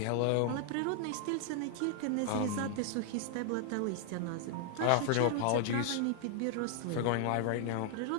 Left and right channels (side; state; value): both; different; correlation 0.00